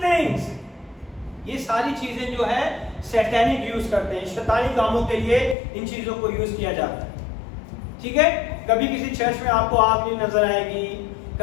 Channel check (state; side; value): drops out; right; at 5.6 s